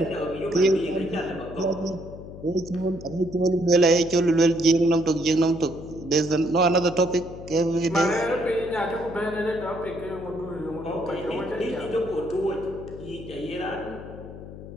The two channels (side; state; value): left; noise; hum, 13 dB below the sound